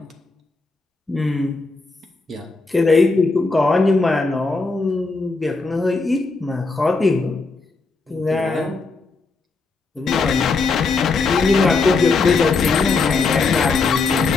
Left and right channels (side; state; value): right; quieter; 4.0 dB